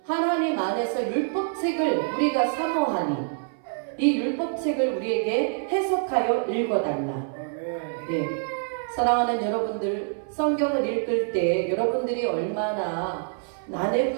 하나님 안에서 율법책을 우리가 사모하니 이 율법책을 우리에게 해석하여 읽어달라. 사랑하는 여러분들, 성경을 읽을 때 여러분들이 얼마나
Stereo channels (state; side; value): silent; left; 59 dB below the other